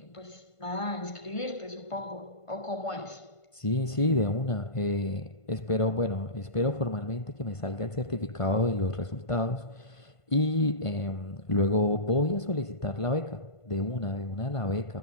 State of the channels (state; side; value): late; right; 1.5 ms